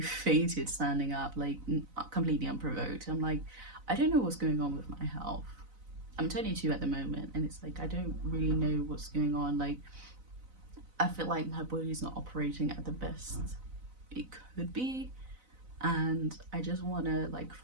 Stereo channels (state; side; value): late; left; 4.0 ms